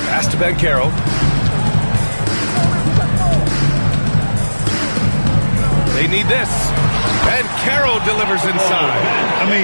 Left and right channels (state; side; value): inverted; both; correlation -1.00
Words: pass to Banchero. They need this. Banchero delivers inside. I